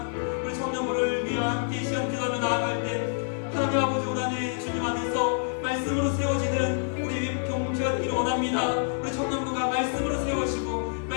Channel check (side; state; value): right; silent; 60 dB below the other